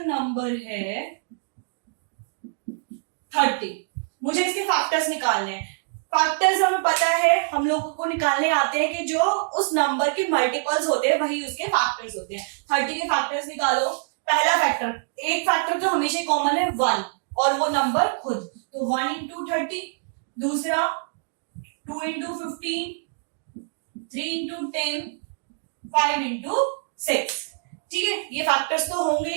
नंबर है 30, मुझे इसके फैक्टर्स निकालने हैं। फैक्टर्स हमें पता है, हम लोगों को निकालने आते हैं कि जो उस नंबर के मल्टीपल्स होते हैं वही उसके फैक्टर्स होते हैं। 30 के फैक्टर्स निकालो। पहला फैक्टर, एक फैक्टर तो हमेशा कॉमन है 1 और वो नंबर खुद, तो 1 into 30। दूसरा 2 into 15, 3 into 10, 5 into 6। ठीक है, ये फैक्टर्स तो होंगे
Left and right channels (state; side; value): silent; left; digital silence